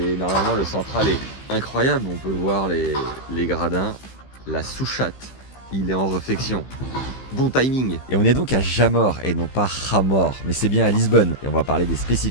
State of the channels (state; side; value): late; right; 15 ms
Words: normalement, le central est incroyable. On peut voir les gradins, la souchate. Il est en réflexion. Bon timing. Et on est donc à Jamor et non pas Jamor, mais c'est bien à Lisbonne. Et on va parler des